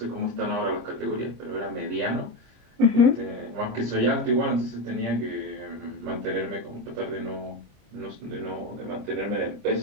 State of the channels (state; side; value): late; left; 26 ms